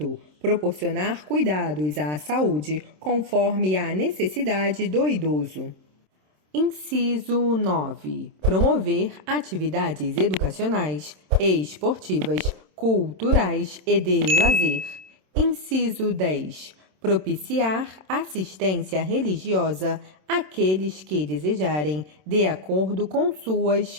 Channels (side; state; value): left; late; 27 ms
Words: Proporcionar cuidados à saúde conforme a necessidade do idoso. Inciso 9. Promover atividades educacionais e esportivas, culturais e de lazer. Inciso 10. Propiciar assistência religiosa àqueles que desejarem, de acordo com suas